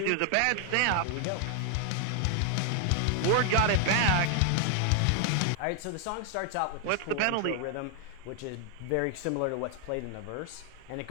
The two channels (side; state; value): both; different; correlation 0.00